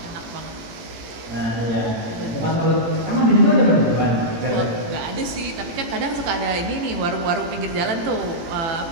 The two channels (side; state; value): left; late; 18 ms